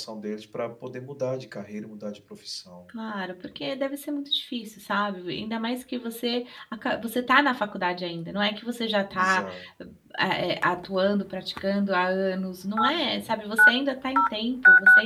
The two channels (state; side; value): identical; both; correlation 1.00